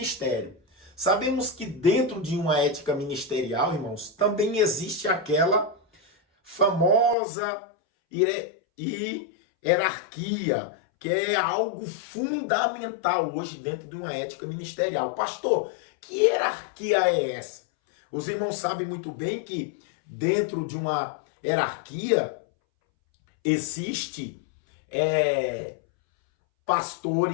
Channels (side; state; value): right; drops out; at 7.2 s